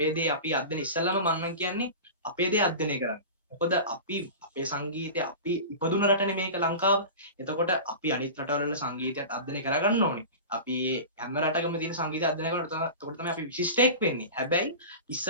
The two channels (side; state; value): both; inverted; correlation -0.31